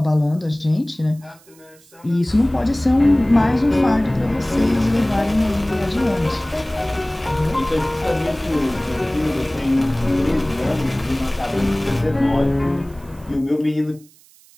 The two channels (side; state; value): right; noise; hiss, 28 dB below the sound